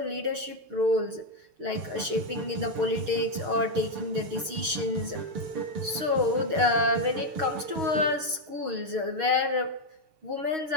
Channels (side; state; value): left; late; 6.3 ms